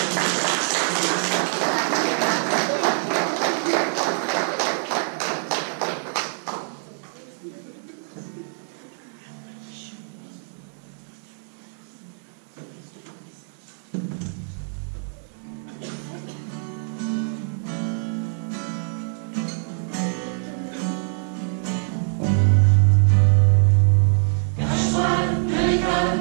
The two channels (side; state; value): left; silent; 62 dB below the other